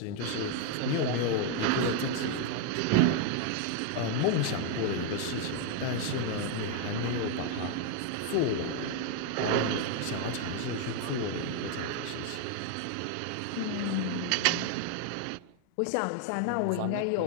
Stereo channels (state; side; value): different; both; correlation 0.01